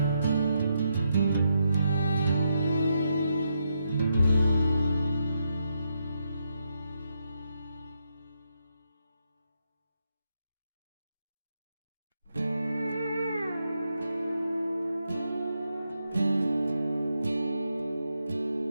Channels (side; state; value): both; inverted; correlation -0.82